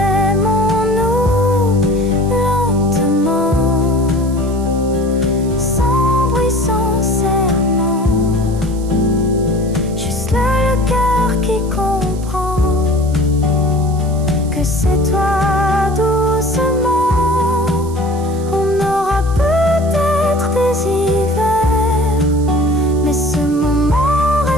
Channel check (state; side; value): noise; right; hiss, 20 dB below the sound